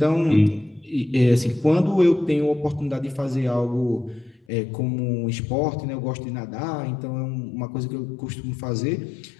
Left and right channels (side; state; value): right; drops out; at 4.5 s